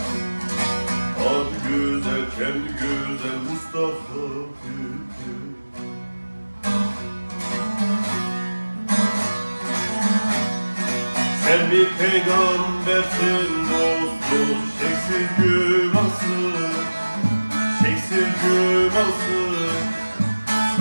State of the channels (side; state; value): both; inverted; correlation -1.00